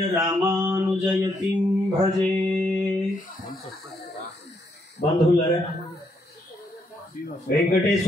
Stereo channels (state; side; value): normal; both; correlation 0.75